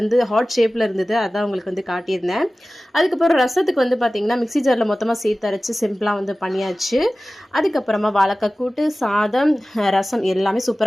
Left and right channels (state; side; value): normal; both; correlation 0.96